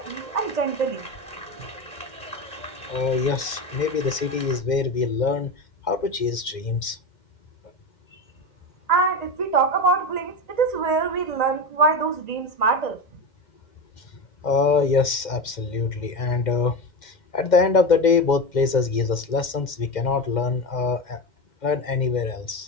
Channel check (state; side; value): late; right; 2.1 ms